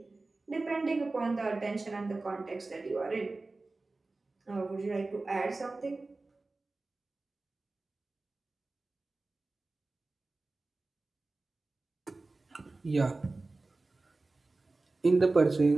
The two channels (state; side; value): quieter; left; 3.3 dB